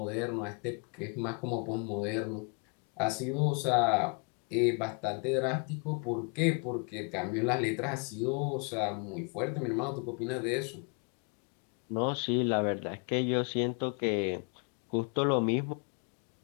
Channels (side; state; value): right; quieter; 36.8 dB